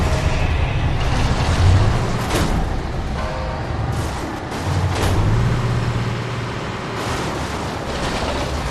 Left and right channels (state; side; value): identical; both; correlation 1.00